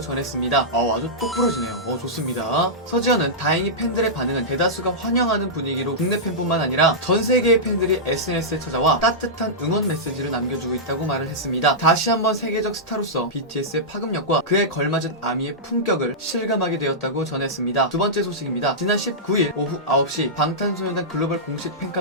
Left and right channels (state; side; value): normal; both; correlation -0.13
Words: 아주 똑부러지네요. 좋습니다. 서지현은 다행히 팬들의 반응은 대다수가 환영하는 분위기로 국내 팬뿐만 아니라 전 세계의 팬들이 SNS에 찾아와 따뜻한 응원 메시지를 남겨주고 있다고 말을 했습니다. 다시 한번 세계적 스타로서 BTS의 파급력과 그에 걸맞은 아미의 품격을 실감하게 되었다고 전했습니다. 두 번째 소식입니다. 지난 19일 오후 9시 방탄소년단 글로벌 공식